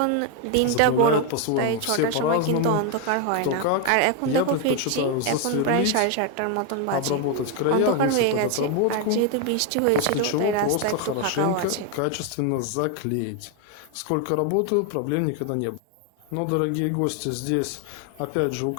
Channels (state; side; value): different; both; correlation 0.01